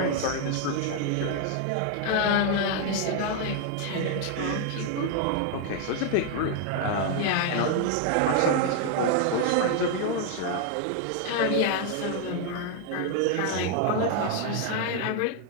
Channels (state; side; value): different; both; correlation 0.00